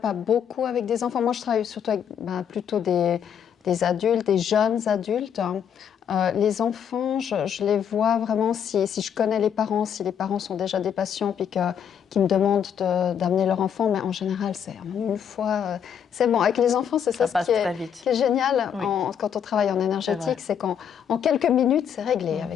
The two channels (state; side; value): quieter; right; 8.3 dB